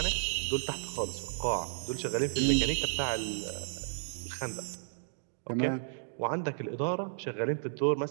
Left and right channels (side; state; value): left; silent; digital silence